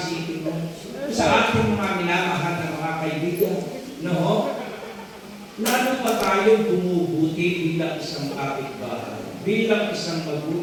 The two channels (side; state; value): both; identical; correlation 1.00